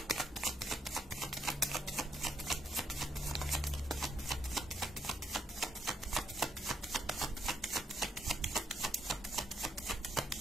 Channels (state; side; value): normal; both; correlation 0.75